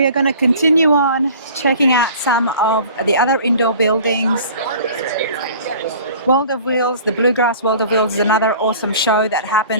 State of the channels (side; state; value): both; inverted; correlation -0.46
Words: are going to continue on checking out some of the other indoor buildings. World of Wheels, the Bluegrass World of Wheels is another awesome show that